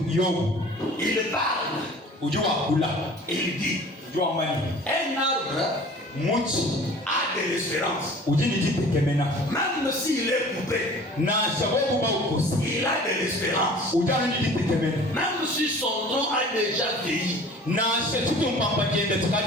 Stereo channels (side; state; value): both; normal; correlation 0.45